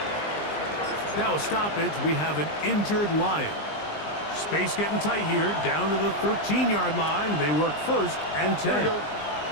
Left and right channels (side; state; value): right; late; 20 ms